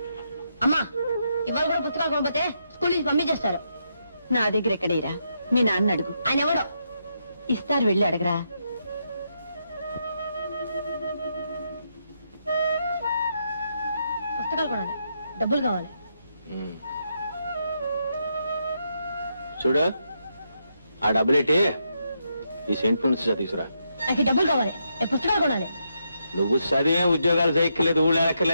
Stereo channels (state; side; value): inverted; both; correlation -0.81